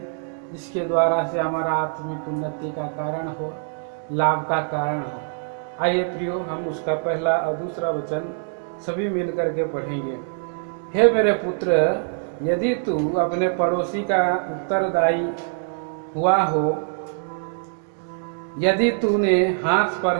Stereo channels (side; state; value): left; silent; digital silence